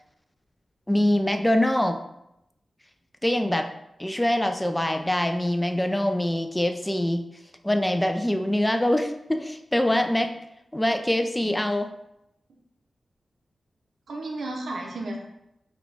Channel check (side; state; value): both; normal; correlation 0.98